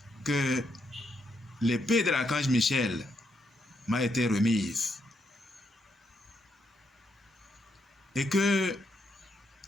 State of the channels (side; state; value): both; normal; correlation 0.78